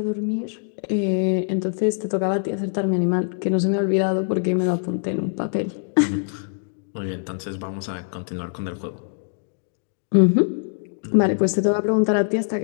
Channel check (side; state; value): right; silent; digital silence